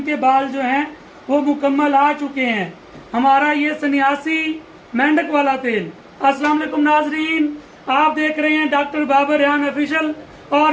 बाल जो हैं वो मुकम्मल आ चुके हैं। हमारा ये सन्यासी मेंढक वाला तेल। अस्सलाम वालेकुम नाजरीन, आप देख रहे हैं डॉक्टर बाबर रेहान ऑफिशियल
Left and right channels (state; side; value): identical; both; correlation 1.00